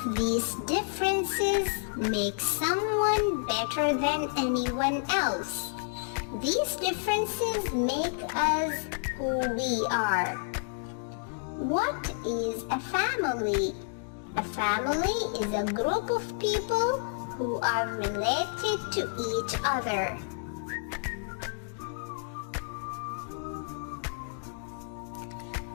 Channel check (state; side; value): silent; right; digital silence